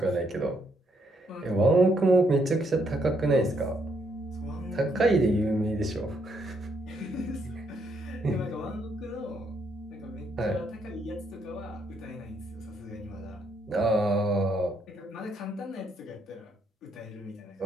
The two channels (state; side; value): normal; both; correlation 0.74